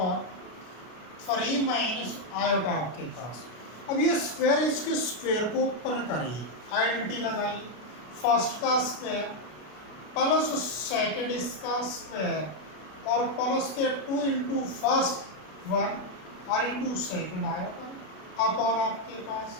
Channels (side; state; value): right; late; 32 ms